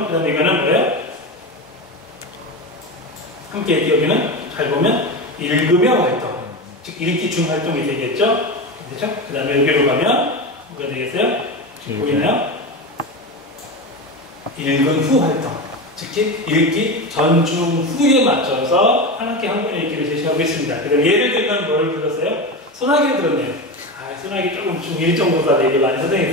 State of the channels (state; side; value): normal; both; correlation 0.21